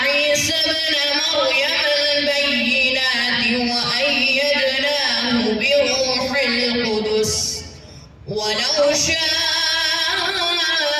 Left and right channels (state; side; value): identical; both; correlation 1.00